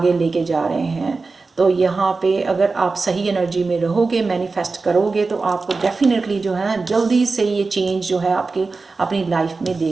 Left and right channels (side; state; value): left; quieter; 4.0 dB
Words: लेके जा रहे हैं। तो यहाँ पे अगर आप सही एनर्जी में रहोगे, मैनिफेस्ट करोगे, तो आपको डेफिनेटली जो है ना जल्दी से ये चेंज जो है आपके अपनी लाइफ में